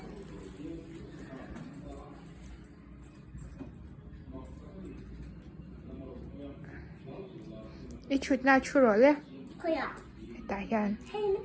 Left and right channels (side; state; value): both; identical; correlation 1.00